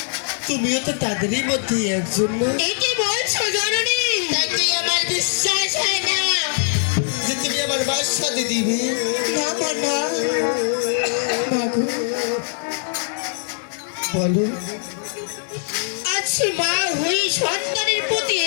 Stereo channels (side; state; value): right; silent; 65 dB below the other